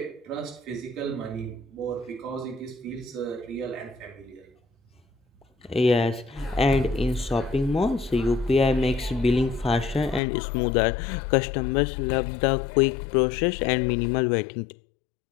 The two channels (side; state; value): right; drops out; at 10.2 s